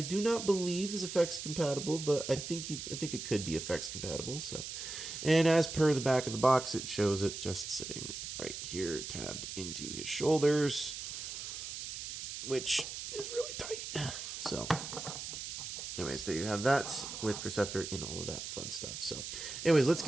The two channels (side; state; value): right; noise; hiss, 7 dB below the sound